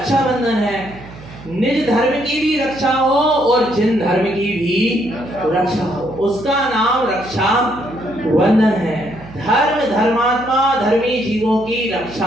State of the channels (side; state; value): right; noise; hum, 17 dB below the sound